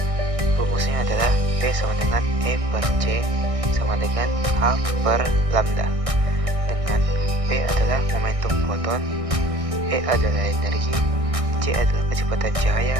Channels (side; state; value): left; late; 1.6 ms